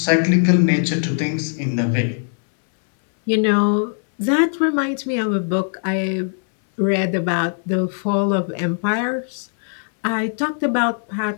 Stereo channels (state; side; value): silent; right; digital silence